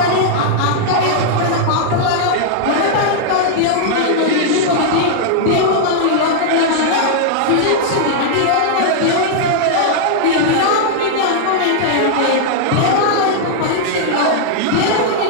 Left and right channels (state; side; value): different; both; correlation -0.01